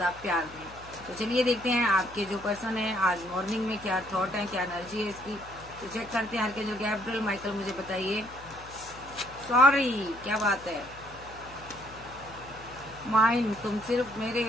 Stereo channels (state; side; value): noise; left; hum, 19 dB below the sound